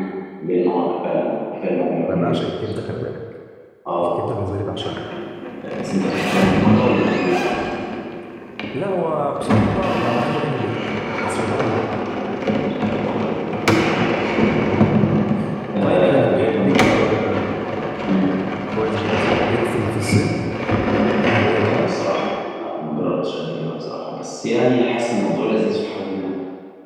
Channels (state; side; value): identical; both; correlation 1.00